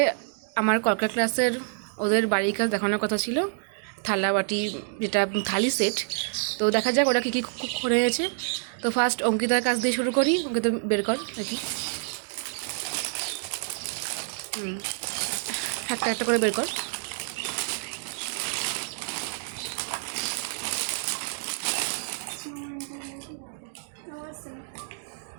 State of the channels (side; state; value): left; silent; 58 dB below the other